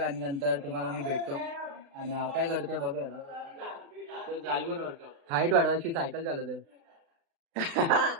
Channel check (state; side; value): late; left; 36 ms